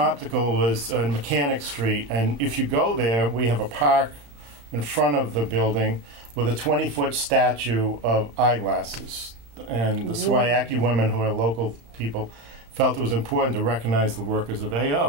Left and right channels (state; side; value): late; left; 35 ms